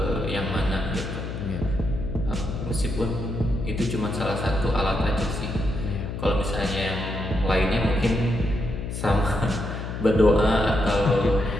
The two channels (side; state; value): left; noise; hum, 6 dB below the sound